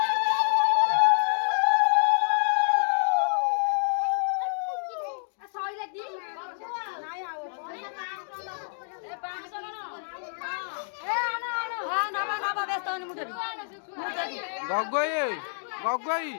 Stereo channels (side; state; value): right; silent; 60 dB below the other